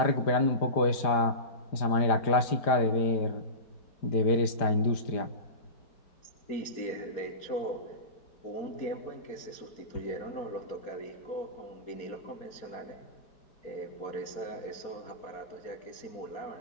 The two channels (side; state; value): right; late; 4.9 ms